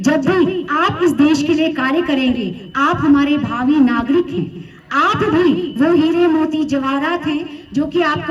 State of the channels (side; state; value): both; identical; correlation 1.00